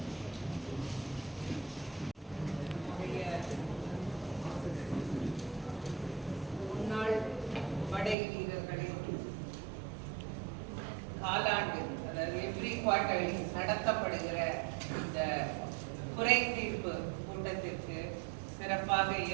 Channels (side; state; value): left; drops out; at 8.2 s